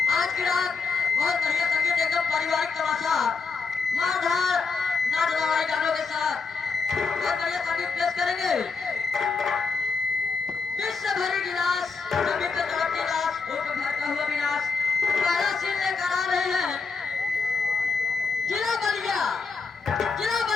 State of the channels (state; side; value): quieter; right; 4.9 dB